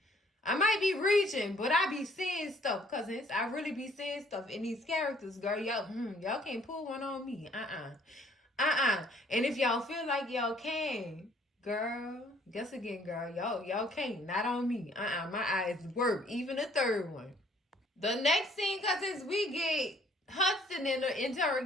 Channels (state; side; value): normal; both; correlation 0.61